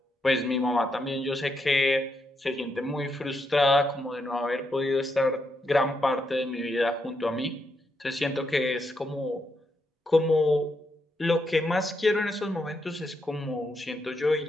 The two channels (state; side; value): normal; both; correlation 0.81